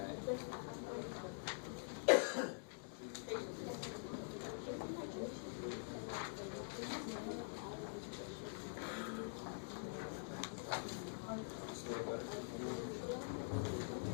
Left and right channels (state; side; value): silent; right; digital silence